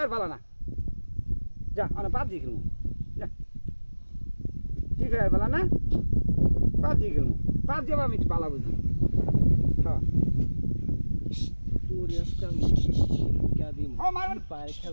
ভালো না যা আমরা পাবজি খেলবো যা ফ্রি ফায়ার ভালো না পাবজি খেলবো পাবজি আবার আমি একটু ভালো বুঝি হ্যাঁ তোর আজকে আমি শিক্ষা দিম ও মার পায়ে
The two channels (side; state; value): both; inverted; correlation -1.00